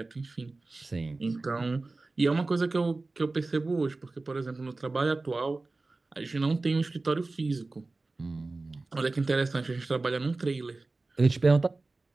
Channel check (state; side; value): quieter; left; 3.4 dB